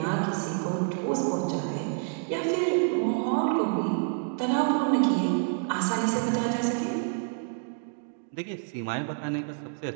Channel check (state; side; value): silent; left; 59 dB below the other